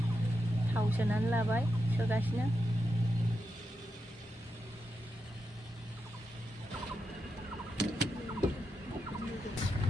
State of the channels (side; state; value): both; normal; correlation 0.87